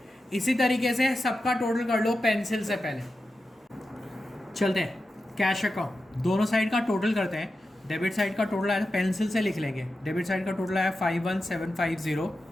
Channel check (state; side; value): normal; both; correlation 0.91